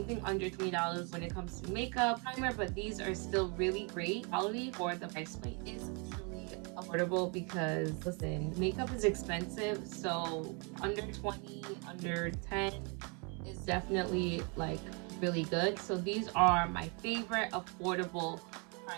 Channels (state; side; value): quieter; left; 34.0 dB